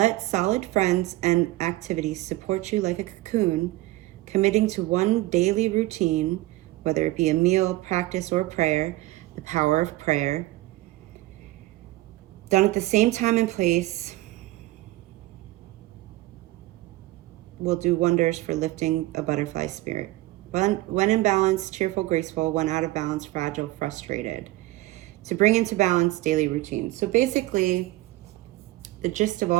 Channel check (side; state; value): left; quieter; 18.2 dB